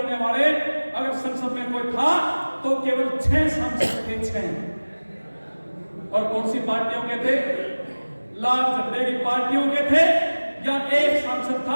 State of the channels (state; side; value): inverted; both; correlation -1.00